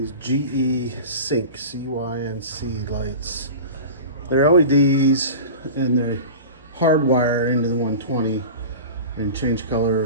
GE Cync, C-Y-N-C lights. They're LEDs and they're hardwire into the 120 and change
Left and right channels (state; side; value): inverted; both; correlation -0.33